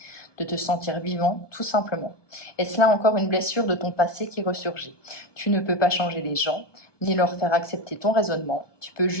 de te sentir vivant, tout simplement. Est-ce là encore une blessure de ton passé qui ressurgit? Tu ne peux pas changer les gens, ni leur faire accepter ton raisonnement. Tu peux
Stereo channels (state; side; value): late; right; 1.2 ms